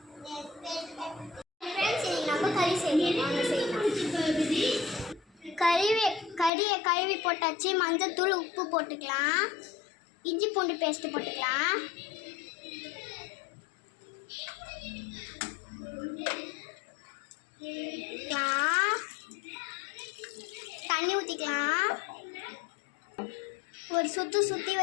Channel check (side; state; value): right; drops out; at 6.5 s